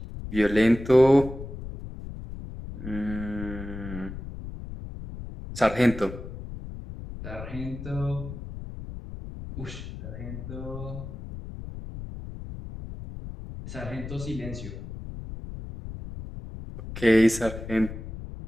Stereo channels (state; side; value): noise; left; rumble, 10 dB below the sound